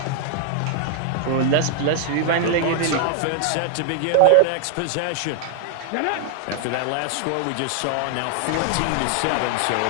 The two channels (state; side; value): different; both; correlation 0.00